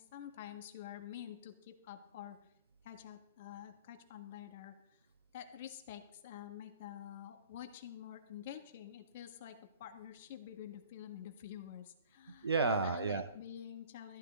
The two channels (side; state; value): both; inverted; correlation -0.47